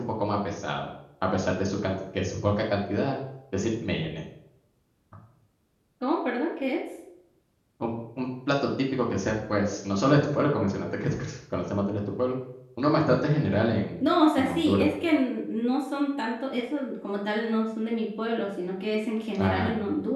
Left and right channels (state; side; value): identical; both; correlation 1.00